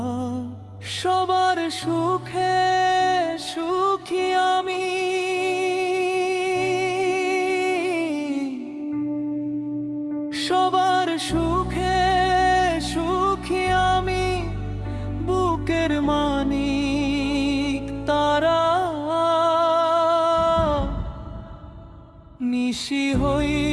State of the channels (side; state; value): both; identical; correlation 1.00